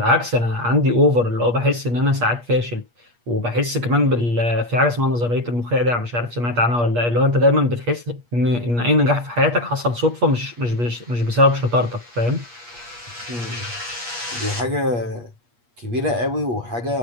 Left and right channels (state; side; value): late; left; 8.4 ms